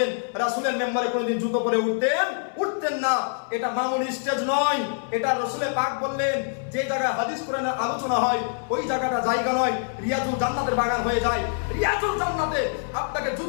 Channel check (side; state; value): right; silent; 62 dB below the other